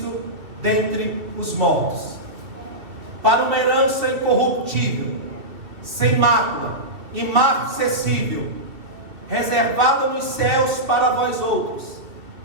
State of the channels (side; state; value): left; late; 2.9 ms